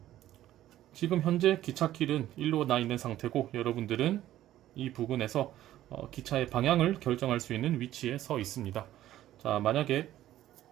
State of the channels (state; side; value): quieter; left; 13.4 dB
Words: 지금 현재 기찻길은 일로 나 있는 상태고, 여러분들은 이 부근에서 기차의 방향을 결정할 수 있는 위치에 서 있습니다. 자, 만약에